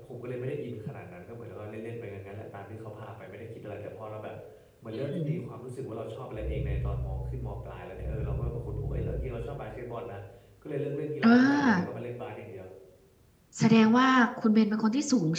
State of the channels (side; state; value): both; identical; correlation 1.00